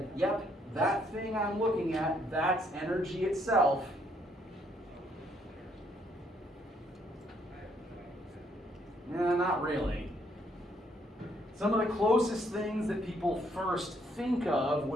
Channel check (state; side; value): normal; both; correlation 0.70